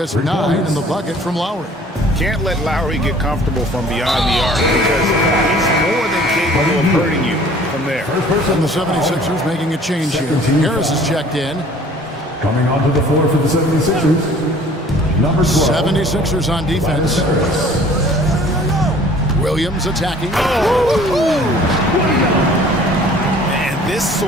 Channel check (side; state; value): both; normal; correlation 0.52